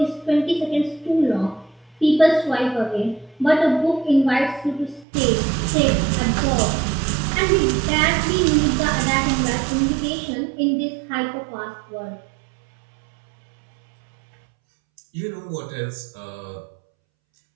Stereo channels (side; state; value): left; drops out; at 5.1 s